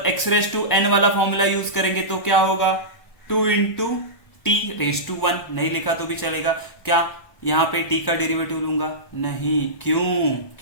x रेस टू n वाला फॉर्मूला यूज करेंगे तो क्या होगा? 2 इंटू टी रेस टू 1। नहीं लिखा तो भी चलेगा। क्या यहाँ पे t का डेरिवेटिव लूंगा? नहीं। क्यों?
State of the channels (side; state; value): right; late; 1.0 ms